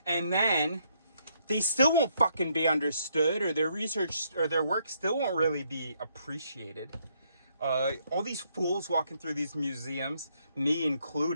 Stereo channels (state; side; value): inverted; both; correlation -0.72